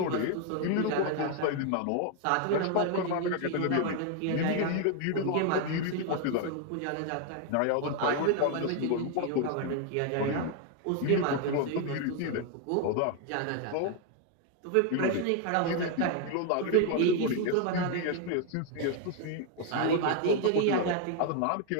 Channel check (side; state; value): both; different; correlation 0.01